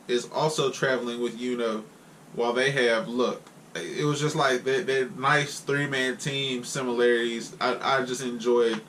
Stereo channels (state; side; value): identical; both; correlation 1.00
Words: is also traveling with Yuno while they have Luck. It was just like that nice 3-man team similarities. I just enjoyed